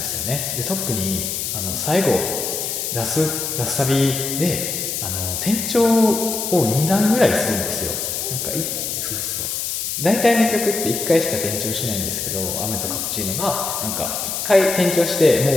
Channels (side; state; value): left; noise; hiss, 3 dB below the sound